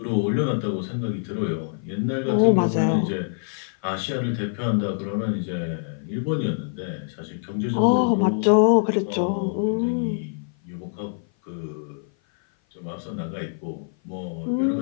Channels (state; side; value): silent; right; 55 dB below the other